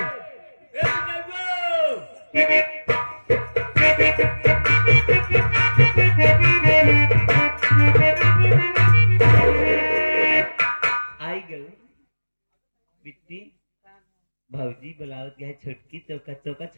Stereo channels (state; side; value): inverted; both; correlation -1.00